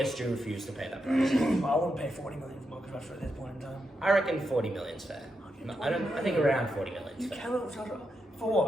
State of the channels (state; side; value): normal; both; correlation 0.84